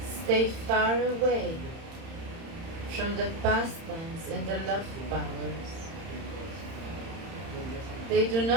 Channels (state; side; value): late; left; 31 ms